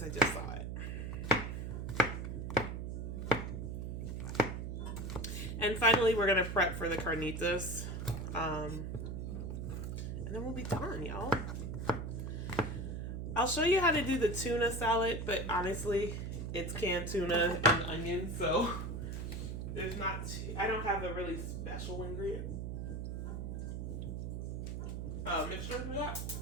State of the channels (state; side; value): noise; right; hum, 4 dB below the sound